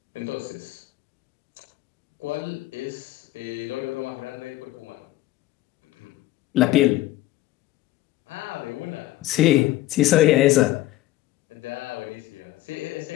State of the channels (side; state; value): right; quieter; 16.1 dB